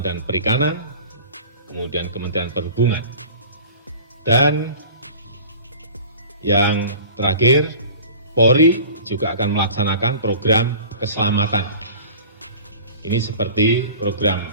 dan Perikanan, kemudian Kementerian Perhubungan. Dan yang terakhir, Polri juga akan melaksanakan program keselamatan. Ini seperti program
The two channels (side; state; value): both; inverted; correlation -0.42